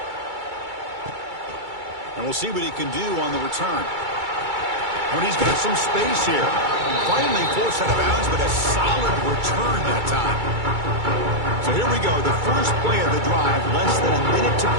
And we'll see what he can do on the return. But he's got some space here. Finally forced out of bounds, but a solid return that time. So here we go, the first play of the drive, less than a minute to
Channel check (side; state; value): left; late; 2.3 ms